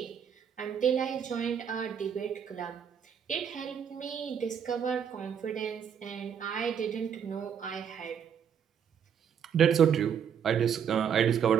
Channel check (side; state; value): left; quieter; 7.9 dB